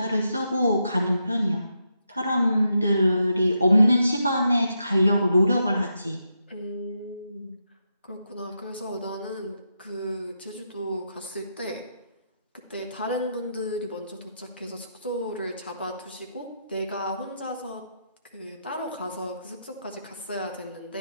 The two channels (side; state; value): both; inverted; correlation -0.83